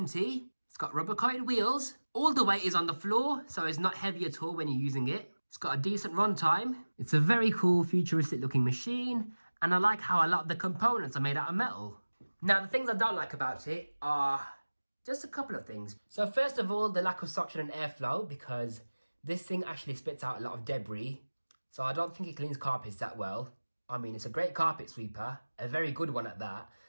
It's got rubber coated wheels. All the weight is on the floor, so it's not heavy at all when you're using it. It's got a decent runtime. It's a very cool futuristic looking machine, and I like how a lot of the components are made out of metal. Now, the things I don't like about it are just a couple of things. So first of all, the lack of suction and airflow, because this thing actually spits out a lot of debris. So I don't think it cleans carpets that well. I mean, it's a great carpet sweeper, a very good one at that.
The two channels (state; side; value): inverted; both; correlation -1.00